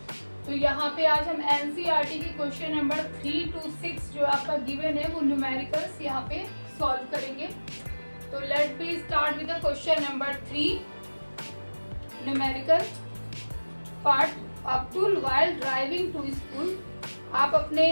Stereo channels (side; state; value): both; inverted; correlation -1.00